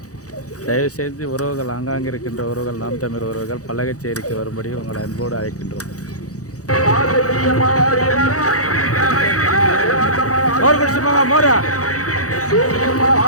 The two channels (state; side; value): late; right; 0.66 ms